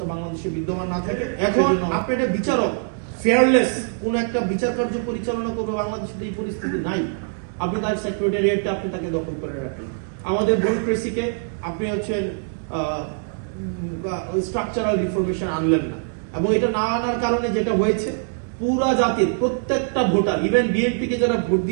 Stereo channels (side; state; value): left; silent; 63 dB below the other